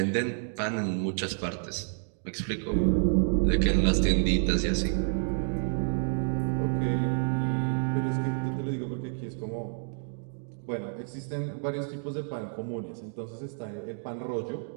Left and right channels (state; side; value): silent; left; digital silence